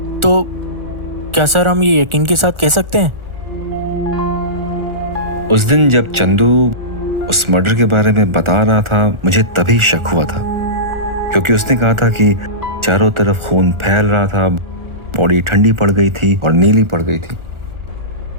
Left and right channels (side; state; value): left; late; 1.4 ms